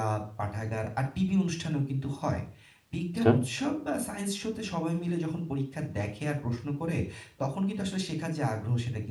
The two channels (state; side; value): identical; both; correlation 1.00